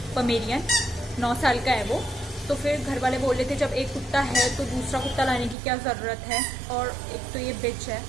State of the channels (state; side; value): drops out; left; at 5.6 s